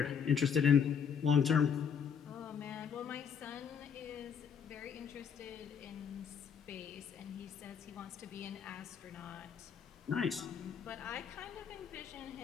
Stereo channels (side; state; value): right; quieter; 7.2 dB